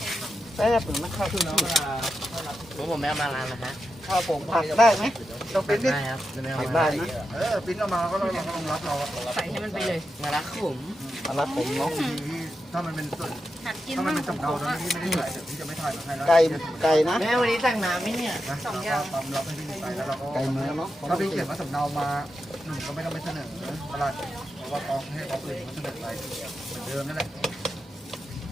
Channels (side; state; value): both; normal; correlation 0.88